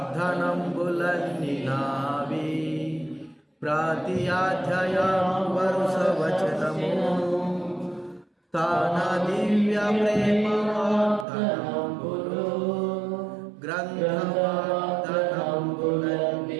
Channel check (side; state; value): left; drops out; at 11.2 s